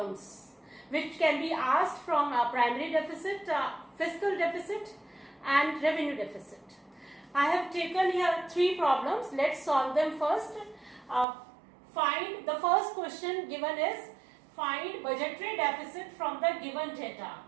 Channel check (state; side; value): drops out; left; at 11.2 s